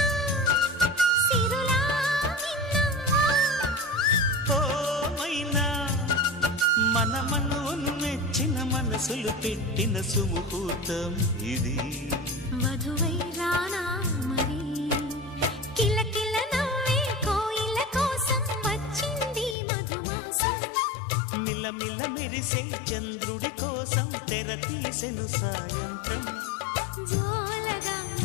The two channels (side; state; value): right; drops out; at 19.6 s